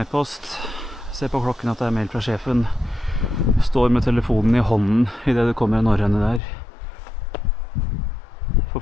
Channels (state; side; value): drops out; right; at 6.4 s